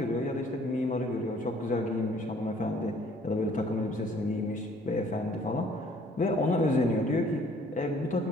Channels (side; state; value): both; normal; correlation 0.58